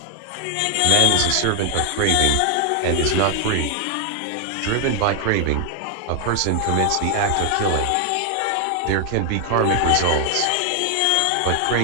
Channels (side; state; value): both; different; correlation 0.00